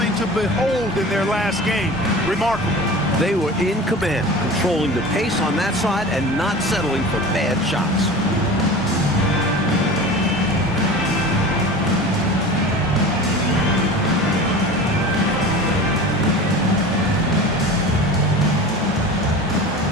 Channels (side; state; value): both; normal; correlation 0.35